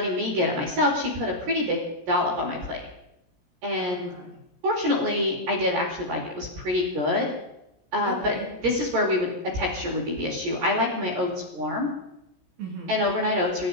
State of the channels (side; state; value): left; late; 17 ms